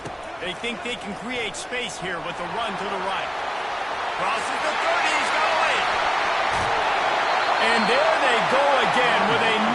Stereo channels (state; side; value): identical; both; correlation 1.00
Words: They think they can create space here with a run to the right. Crosses the 30, he's going. And there they go again with